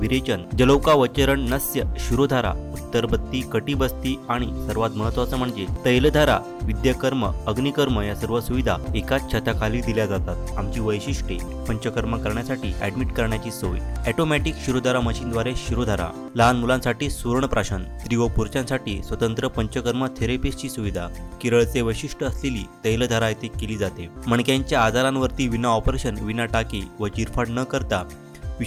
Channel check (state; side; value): identical; both; correlation 1.00